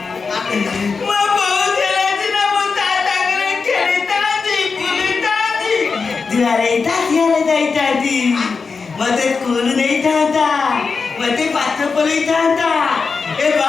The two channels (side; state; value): right; quieter; 4.9 dB